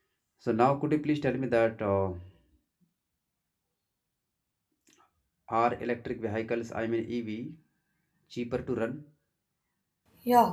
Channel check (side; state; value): both; identical; correlation 1.00